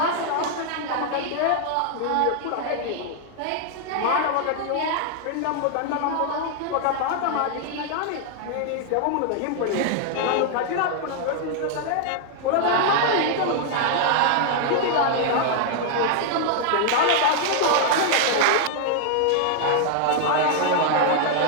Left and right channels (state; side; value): different; both; correlation 0.00